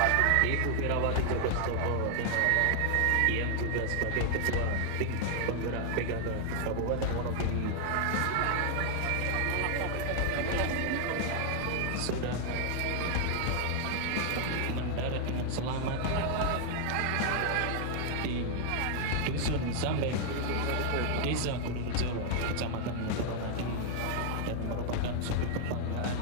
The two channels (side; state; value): both; different; correlation 0.00